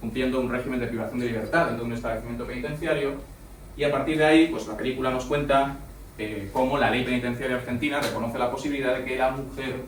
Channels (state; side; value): identical; both; correlation 1.00